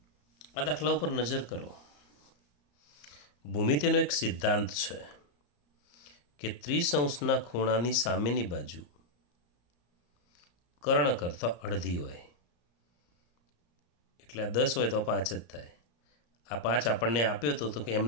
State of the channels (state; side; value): late; right; 34 ms